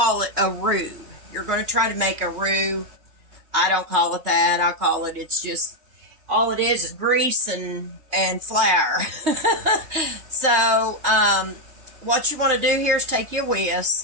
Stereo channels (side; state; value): left; late; 3.2 ms